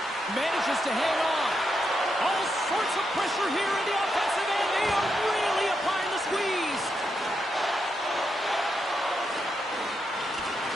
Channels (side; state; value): both; normal; correlation 0.83